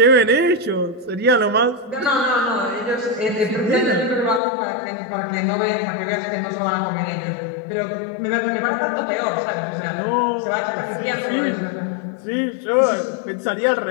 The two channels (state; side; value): drops out; right; at 4.4 s